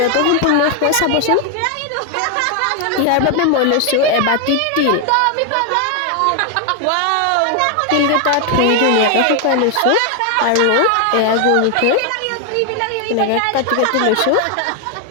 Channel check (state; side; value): different; both; correlation 0.01